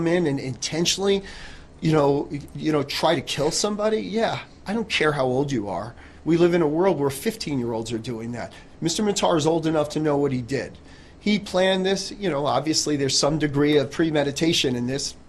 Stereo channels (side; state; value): both; identical; correlation 1.00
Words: in and intentionally, try to kill somebody, I don't care how old you are. We live in a world where 15-year-olds are doing that. Mr. Matar is old enough to know what he did. He planned this. Obviously there's some degree of premeditation in this.